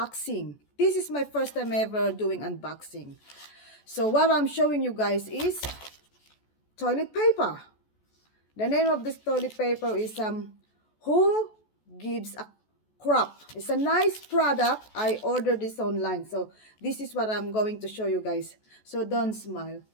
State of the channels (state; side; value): late; right; 14 ms